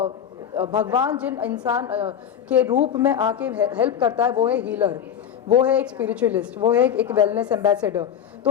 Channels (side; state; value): right; quieter; 8.8 dB